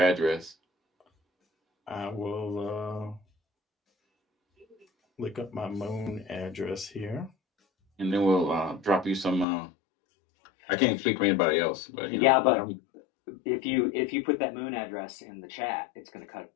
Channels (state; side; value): drops out; right; at 9.5 s